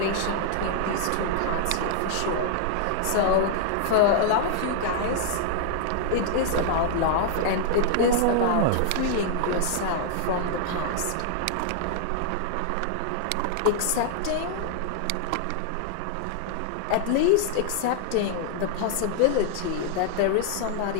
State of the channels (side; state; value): both; different; correlation -0.01